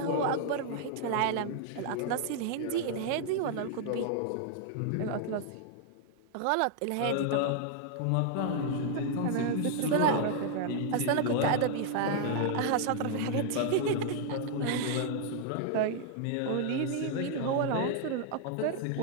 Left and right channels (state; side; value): different; both; correlation 0.00